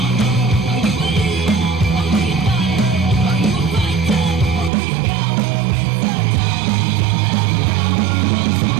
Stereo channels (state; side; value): drops out; left; at 4.7 s